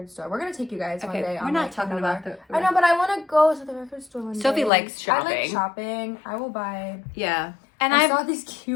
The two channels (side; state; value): right; drops out; at 4.7 s